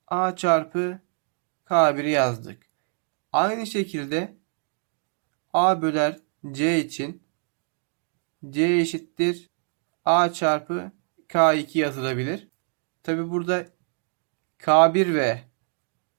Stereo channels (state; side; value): silent; left; 61 dB below the other